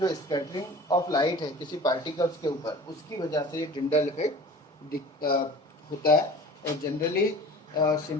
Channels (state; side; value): normal; both; correlation 0.42